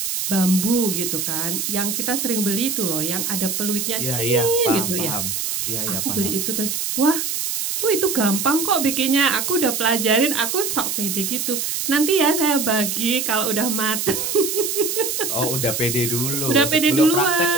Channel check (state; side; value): noise; right; hiss, 2 dB below the sound